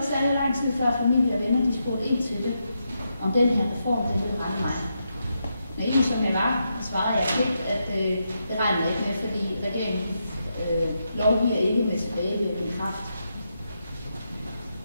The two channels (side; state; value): both; inverted; correlation -0.84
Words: særlig lang tid før familie og venner de spurgte ind til det, om den her reform det ville ramme mig. Naiv som jeg var, svarede jeg helt, at det regnede ikke med, fordi regeringen lovgiver ikke med tilbagevirkende kraft.